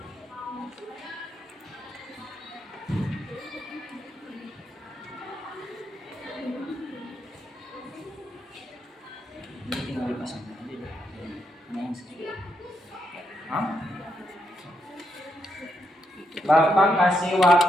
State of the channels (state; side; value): normal; both; correlation 0.80